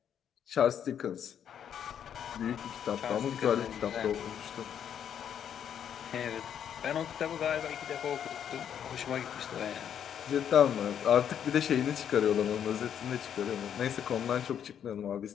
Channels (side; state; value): right; quieter; 8.9 dB